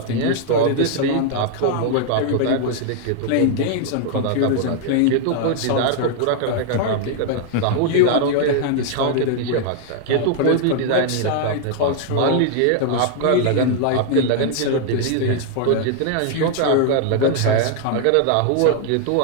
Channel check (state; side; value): different; both; correlation 0.00